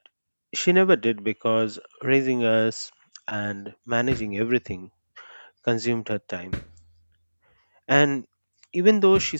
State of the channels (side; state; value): both; inverted; correlation -1.00